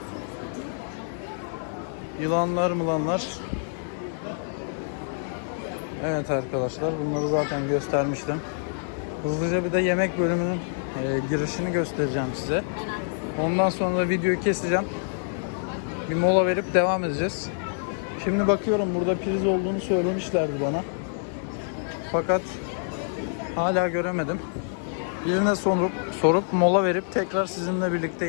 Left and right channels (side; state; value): right; silent; 61 dB below the other